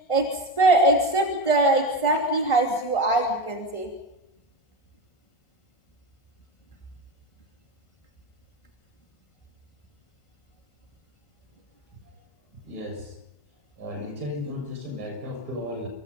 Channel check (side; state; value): right; late; 1.5 ms